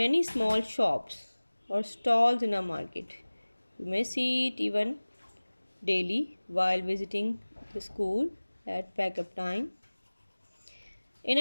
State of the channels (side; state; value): both; inverted; correlation -1.00